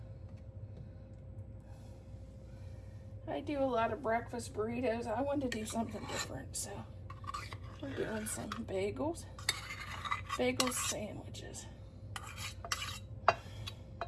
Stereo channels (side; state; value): both; identical; correlation 1.00